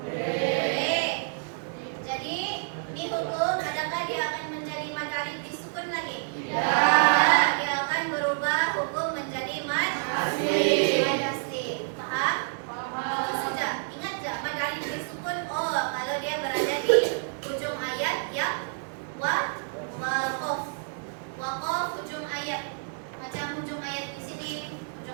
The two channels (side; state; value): left; silent; digital silence